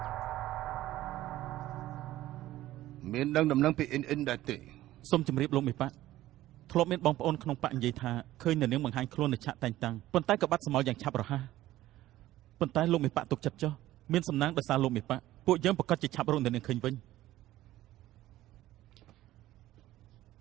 មានដឹងដំណឹងពីអ៊ិនដែរទេសូមជម្រាបលោកមេប៉ាធ្លាប់មានបងប្អូនក្នុងប៉ានិយាយថាឃើញនៅនាងបង្ហាញខ្លួននៅឆាកតែងតាំងប៉ុន្តែក៏បាត់សមោលយ៉ាងឆាប់រហ័សប៉ុន្តែលោកមេប៉ាទុកចិត្តចុះមានសំណាងដោយសារលោកមេប៉ាពួកយើងប្រកាសជាឆាប់រកនៅនាងឃើញវិញ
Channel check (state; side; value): quieter; left; 15.1 dB